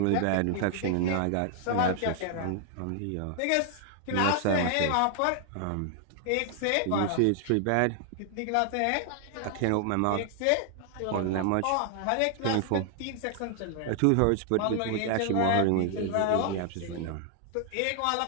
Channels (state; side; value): different; both; correlation 0.00